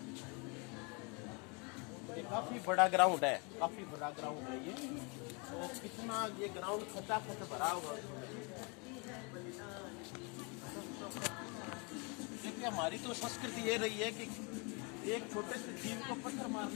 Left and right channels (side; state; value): right; quieter; 32.1 dB